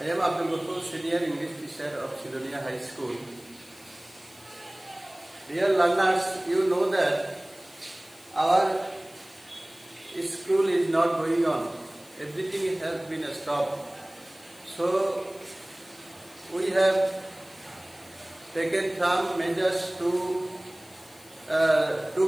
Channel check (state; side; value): noise; left; hiss, 24 dB below the sound